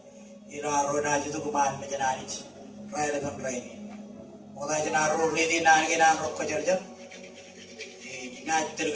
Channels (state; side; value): identical; both; correlation 1.00